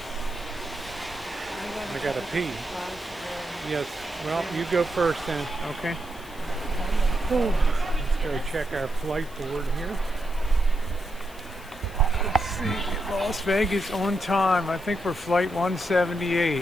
I got to pee. Yes. Well, you go first then. Okay. Let's go check our flight board here. Let's see. Las Vegas on time. I think we're flight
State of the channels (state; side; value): noise; left; hiss, 22 dB below the sound